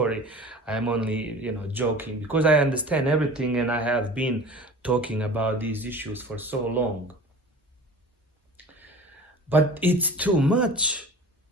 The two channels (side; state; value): both; normal; correlation 0.40